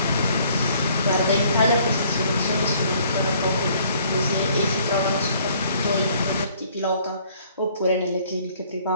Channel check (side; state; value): both; inverted; correlation -0.60